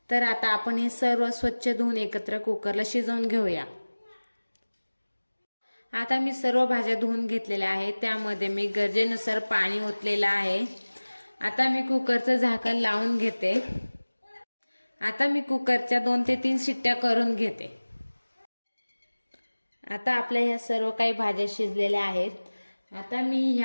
तर आता आपण हे सर्व स्वच्छ धुवून एकत्र कुकरला शिजवून घेऊया। आता मी सर्व भाज्या धुवून घेतलेल्या आहेत, त्यामध्ये मी गरजेनुसार पाणी ओतलेलं आहे। आता मी कुकरचं झाकण लावून घेते। आता मी कुकरच्या 2 ते 3 शिट्ट्या करून घेते। आता आपल्या ह्या सर्व काही भाज्या शिजलेल्या आहेत। आता मी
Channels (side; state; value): both; inverted; correlation -1.00